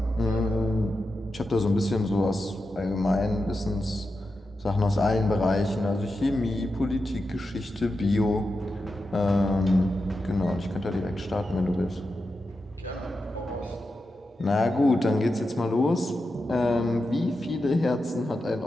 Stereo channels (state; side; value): normal; both; correlation 0.89